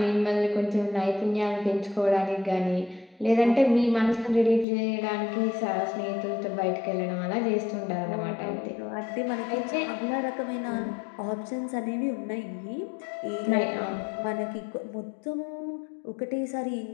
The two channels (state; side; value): drops out; right; at 4.7 s